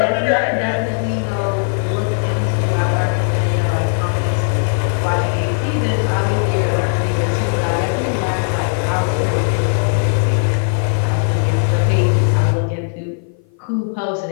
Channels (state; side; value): silent; right; 55 dB below the other